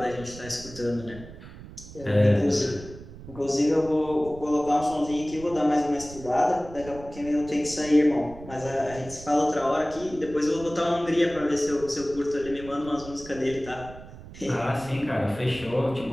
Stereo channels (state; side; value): noise; right; rumble, 16 dB below the sound